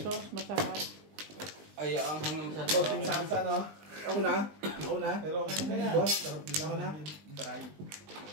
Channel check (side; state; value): left; late; 20 ms